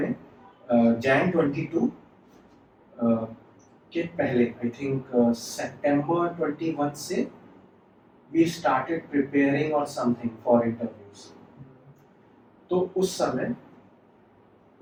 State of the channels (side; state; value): both; identical; correlation 1.00